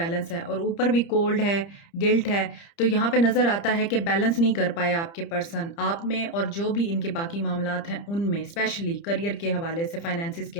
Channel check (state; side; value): late; right; 30 ms